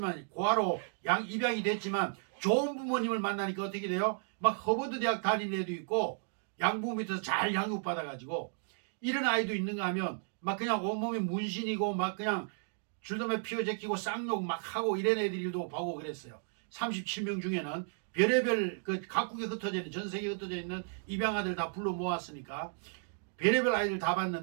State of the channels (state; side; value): silent; left; 55 dB below the other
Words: 고아로 입양이 됐지만 좋은 부모님을 만나니까 어떻게 돼요? 막 허버드 대학 다니는 애도 있고 양부모 밑에서 잘 양육받아가지고 이런 아이도 있는가 하면 막 그냥 온몸에 문신이고 막 그냥 줄담배 피워제끼고 쌍욕 막 하고 이런 애들도 보고 그랬어요. 37명 중에는 별의별 각국에 흩어져 있는 전 세계에 흩어져 있는 입양아들 다 불러 모았으니까 별의별 아이들 다